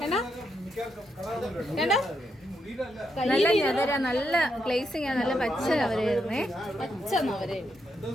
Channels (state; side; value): normal; both; correlation 0.80